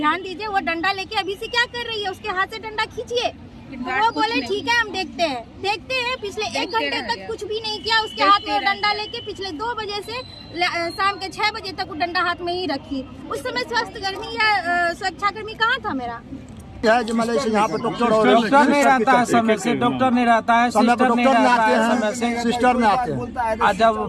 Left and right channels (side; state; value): both; identical; correlation 1.00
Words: दीजिए, वो डंडा लेके अभी से क्या कर रही है, उसके हाथ से डंडा खींचिए। वो बोले ठीक है हम देखते हैं। पिछले 1 घंटे तक कुछ भी नहीं किया, उसके हाथ में डंडा लेके पिछले 2 बजे से शाम के 6 बजे तक वो डंडा हाथ में ही रखी। उस समय स्वास्थ्यकर्मी या सुरक्षाकर्मी कहाँ था मेरा? यहाँ पे डॉक्टर नहीं रहता है समय से, डॉक्टर नहीं रहता है, सिस्टर नहीं रहता है समय से, सिस्टर में आते हैं। और जब